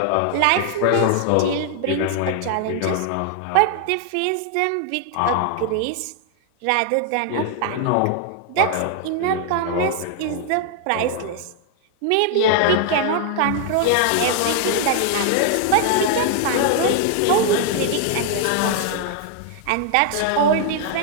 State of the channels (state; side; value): different; both; correlation 0.00